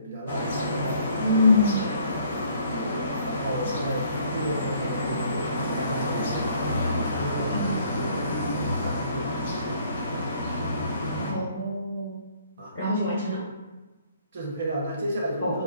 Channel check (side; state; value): both; inverted; correlation -0.61